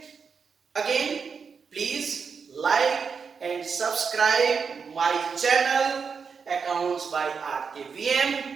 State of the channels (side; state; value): left; quieter; 5.8 dB